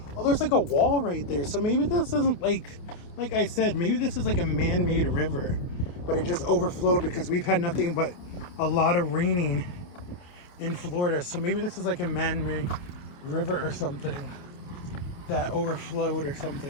Oh, there's like a wall right there. So maybe this isn't like I said, maybe this is like a man-made river, but it just overflowed because we've had nothing but a lot of raining in Florida. So maybe this is like a man-made river or something that overflowed or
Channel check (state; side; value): late; right; 28 ms